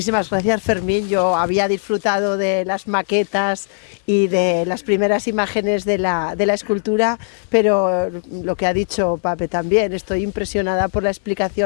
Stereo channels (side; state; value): right; silent; digital silence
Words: gracias, Fermín. Yo había disfrutado de las maquetas y de las primeras imágenes de la escultura, pero lo que ha dicho Pape también, estoy impresionada por la